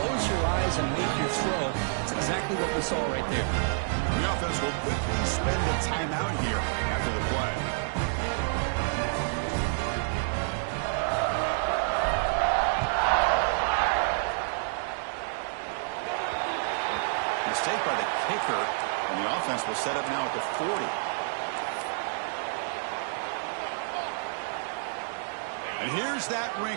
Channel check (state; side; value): silent; left; digital silence